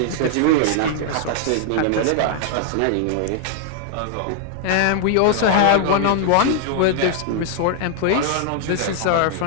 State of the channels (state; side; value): different; both; correlation 0.00